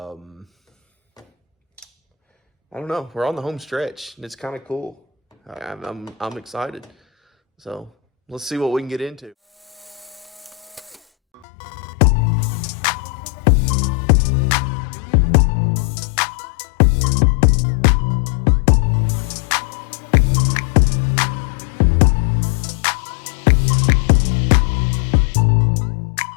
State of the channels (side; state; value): right; drops out; at 11.4 s